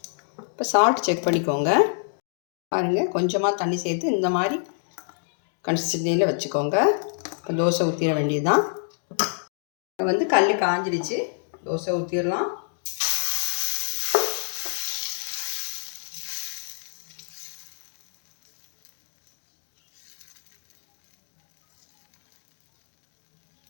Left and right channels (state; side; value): silent; right; digital silence